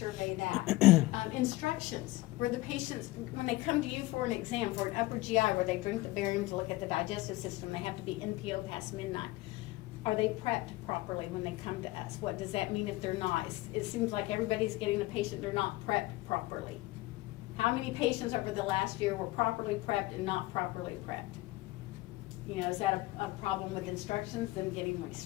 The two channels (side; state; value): right; quieter; 19.4 dB